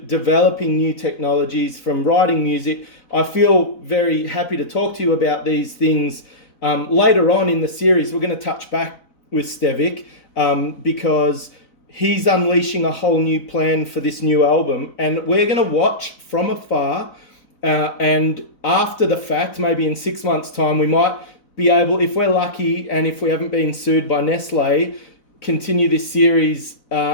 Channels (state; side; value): late; right; 4.0 ms